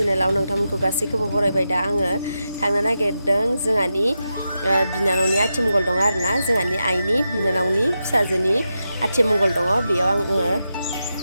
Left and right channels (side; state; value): both; inverted; correlation -0.88